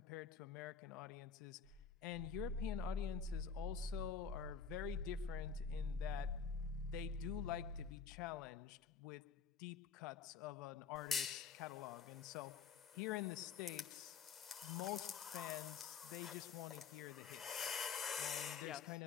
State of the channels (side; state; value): right; quieter; 6.0 dB